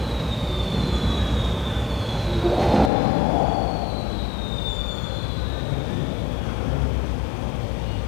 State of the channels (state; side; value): drops out; right; at 2.9 s